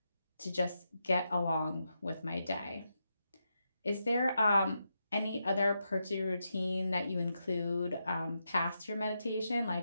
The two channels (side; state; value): both; inverted; correlation -0.85